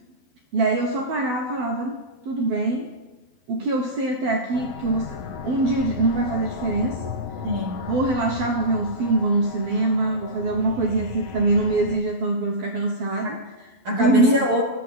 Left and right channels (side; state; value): left; late; 12 ms